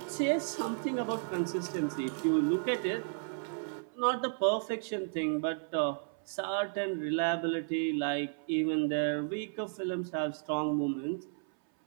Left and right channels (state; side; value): silent; left; 56 dB below the other